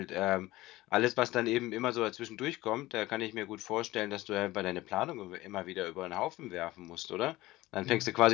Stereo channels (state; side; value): quieter; right; 18.2 dB